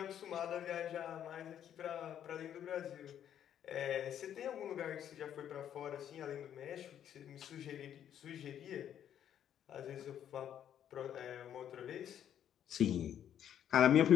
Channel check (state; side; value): quieter; right; 10.0 dB